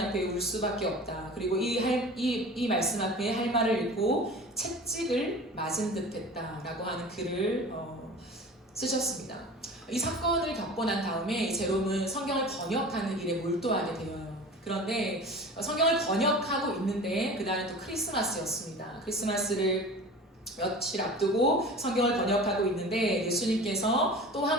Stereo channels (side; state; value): both; normal; correlation 0.38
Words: 앞에 울 수밖에 없다. 그리고 이 말씀 앞에 할 말을 읽고 채찍을 맞은 듯 했다 라고 하는 글을 쓰셨습니다. 이 사건을 겪고 난 다음에 제롬은 성경을 번역하는 일에 몰두하게 되어요. 그런데 성경을 번역하고 있는데 그날은 또 크리스마스였습니다. 크리스마스를 며칠 앞두고 성경을 번역하고 있는데 예수님께서 또